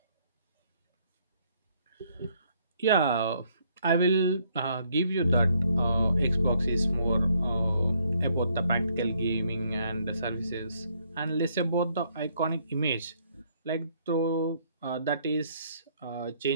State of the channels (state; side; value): inverted; both; correlation -0.69